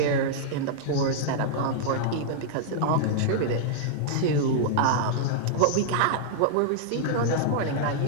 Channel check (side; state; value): both; different; correlation -0.01